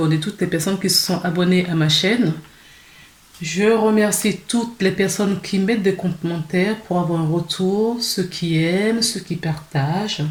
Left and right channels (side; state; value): both; identical; correlation 1.00